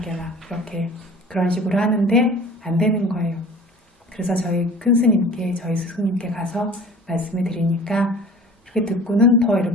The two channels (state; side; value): normal; both; correlation 0.44